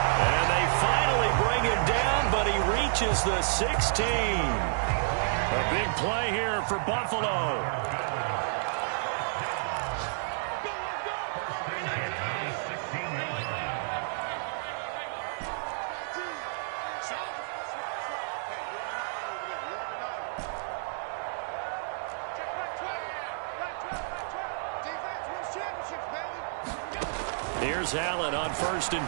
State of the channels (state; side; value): silent; left; digital silence